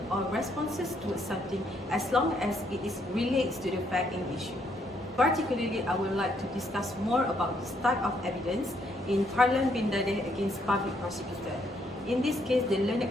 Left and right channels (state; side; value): normal; both; correlation 0.72